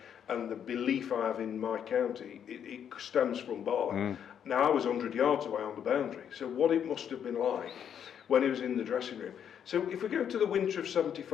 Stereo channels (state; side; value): quieter; right; 8.6 dB